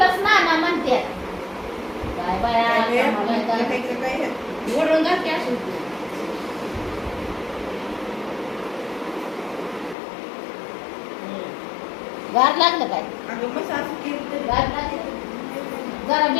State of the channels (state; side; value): drops out; right; at 10.0 s